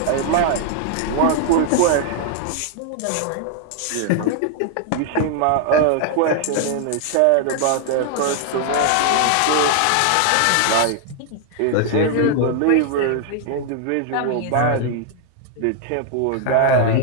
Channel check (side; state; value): both; different; correlation 0.00